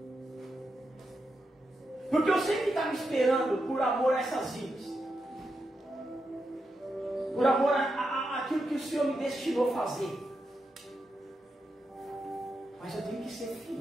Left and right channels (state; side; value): normal; both; correlation 0.86